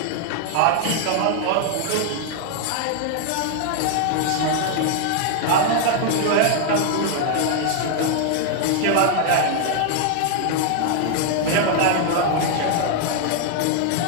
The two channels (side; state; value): both; different; correlation 0.00